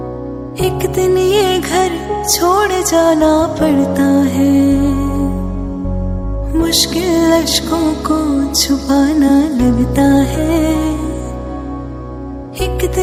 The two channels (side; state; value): both; identical; correlation 1.00